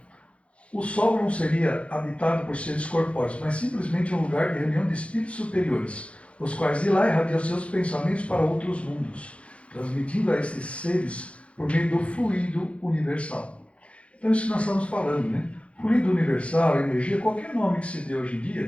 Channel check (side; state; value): right; late; 0.061 ms